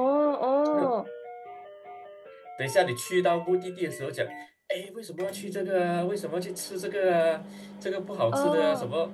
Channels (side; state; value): both; identical; correlation 1.00